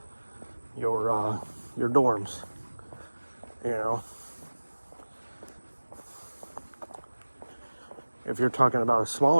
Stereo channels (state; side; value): inverted; both; correlation -1.00